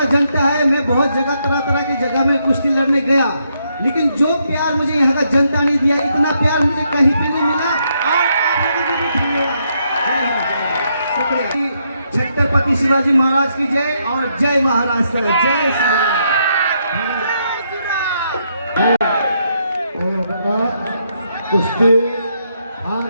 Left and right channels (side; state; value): both; inverted; correlation -0.77